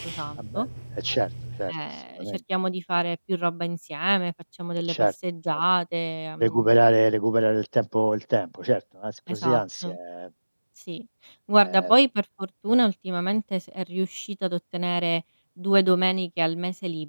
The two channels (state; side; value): inverted; both; correlation -1.00